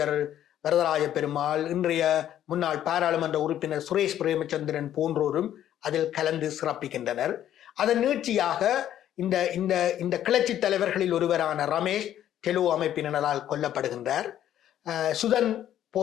வரதராஜ பெருமாள், இன்றைய முன்னாள் பாராளுமன்ற உறுப்பினர் சுரேஷ் பிரேமச்சந்திரன் போன்றோரும் அதில் கலந்து சிறப்பிக்கின்றனர். அதன் நீட்சியாக இந்த கிளர்ச்சி தலைவர்களில் ஒருவரான ரமேஷ் டெலோ அமைப்பினரால் கொல்லப்படுகின்றார். சுதன்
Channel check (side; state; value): right; quieter; 11.3 dB